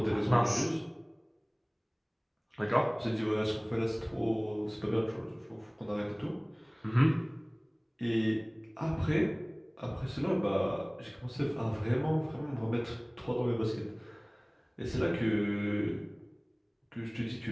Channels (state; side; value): identical; both; correlation 1.00